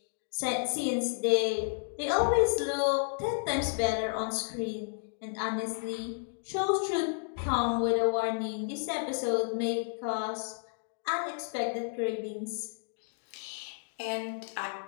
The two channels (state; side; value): silent; right; digital silence